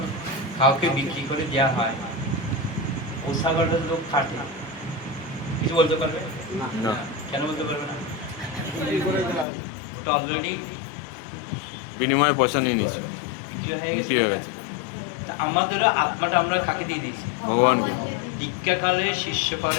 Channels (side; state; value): right; drops out; at 9.5 s